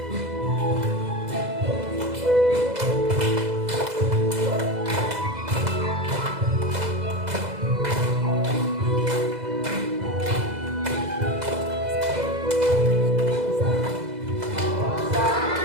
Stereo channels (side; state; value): left; late; 2.0 ms